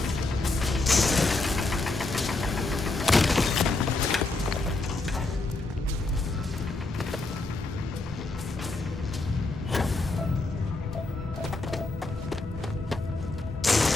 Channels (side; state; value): right; quieter; 3.2 dB